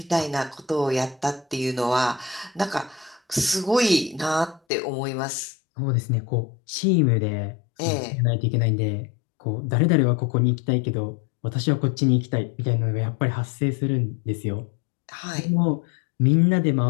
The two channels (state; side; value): drops out; right; at 4.6 s